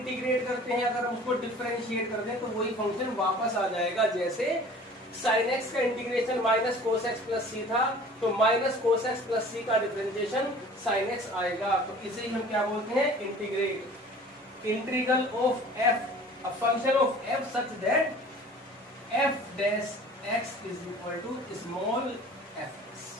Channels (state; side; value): normal; both; correlation 0.46